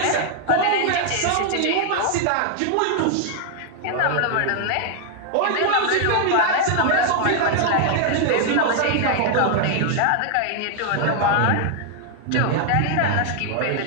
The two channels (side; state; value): both; different; correlation 0.00